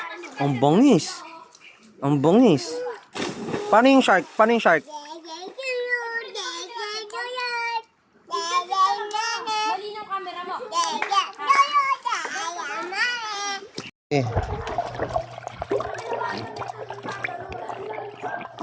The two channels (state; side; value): identical; both; correlation 1.00